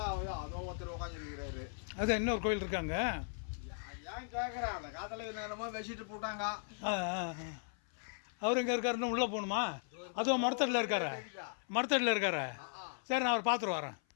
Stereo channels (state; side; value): silent; right; 53 dB below the other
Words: அதோ ஒருத்தர் உட்காந்துருக்கிறாரு. அது இன்னொரு கோயில் இருக்காங்க. ஏன் கேட்குறேன், அந்த காலத்தில் நேரமாக வச்சுட்டு போட்டாங்க. அவர் எங்கே இருக்காருன்னு உள்ளே போகணுமா? அதுவும் மரத்தடியில் இருக்காரு. சரி, நான் அவர் பார்த்துட்டு வரேன்.